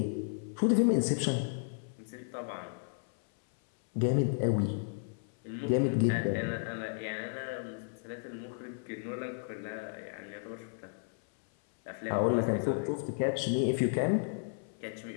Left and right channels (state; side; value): silent; right; 55 dB below the other